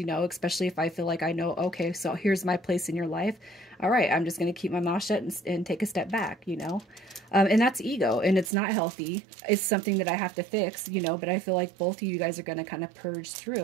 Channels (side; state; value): left; drops out; at 8.5 s